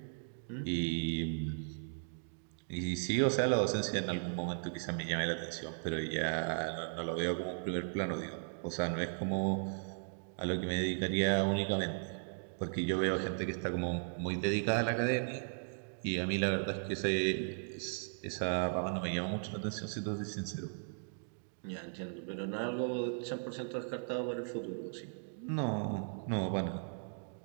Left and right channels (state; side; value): silent; left; digital silence